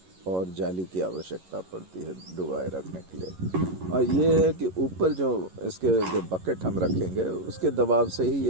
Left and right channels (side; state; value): left; late; 11 ms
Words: और जाली की आवश्यकता पड़ती है डुबाए रखने के लिए। और ये है कि ऊपर जो इसके जो बकेट हम रखेंगे उसके दबाव से ही